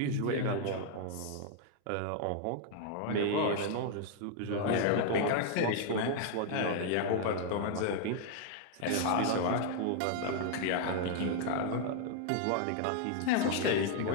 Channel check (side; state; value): both; different; correlation 0.00